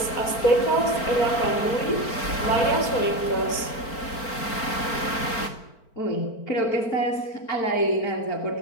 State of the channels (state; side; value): late; right; 4.4 ms